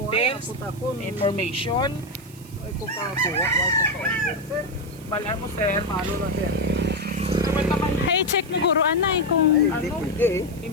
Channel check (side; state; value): right; noise; hiss, 22 dB below the sound